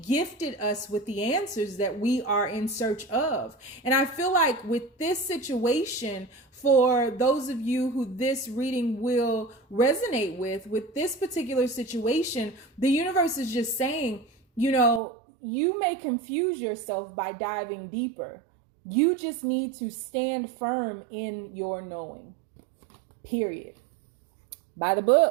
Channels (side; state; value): left; drops out; at 15.0 s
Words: gifted us with the answers that we are in search of. And I feel like with this situation, for those of you who this reading will resonate with this particular situation, the universe is just saying, you know, you may confuse yourself by diving deeper. You just need to stand firm in your knowing. Period. By the